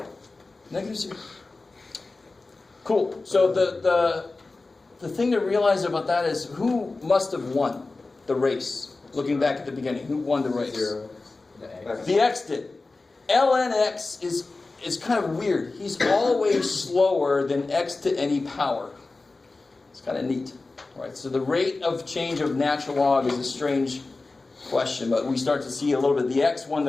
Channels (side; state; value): right; quieter; 3.5 dB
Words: Negative 0. Cool. So the thing to realize about that is who must have won the race? Looking back at the beginning, who won the race? 0. The x did. ln x is kind of weird. He's always slower than x to any power. It's kind of neat. All right. So the rate of change of natural log is a strange question, but we start to see a little bit. The x won